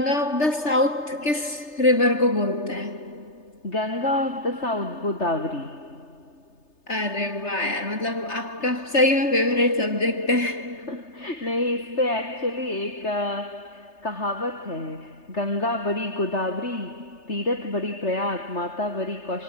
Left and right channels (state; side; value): late; right; 3.3 ms